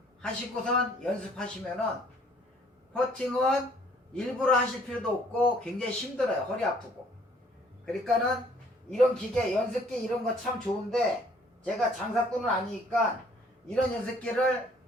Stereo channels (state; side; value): normal; both; correlation 0.60